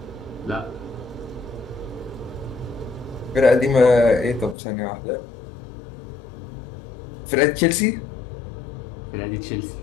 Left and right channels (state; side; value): drops out; right; at 4.5 s